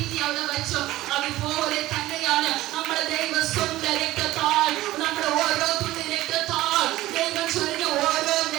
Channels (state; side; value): quieter; left; 16.5 dB